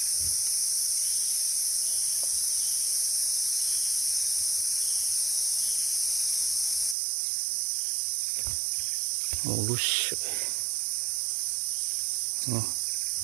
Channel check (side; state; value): left; drops out; at 7.0 s